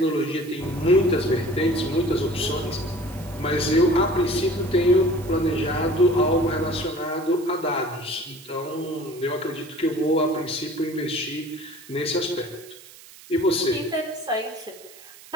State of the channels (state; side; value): noise; right; hiss, 20 dB below the sound